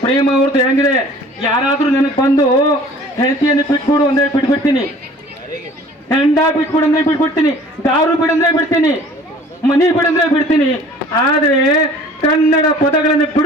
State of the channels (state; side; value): normal; both; correlation 0.49